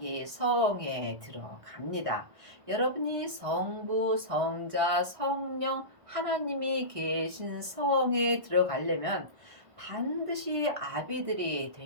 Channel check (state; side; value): late; left; 1.6 ms